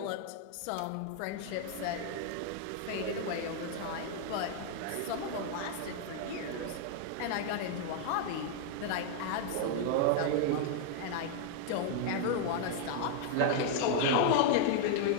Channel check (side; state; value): both; different; correlation 0.00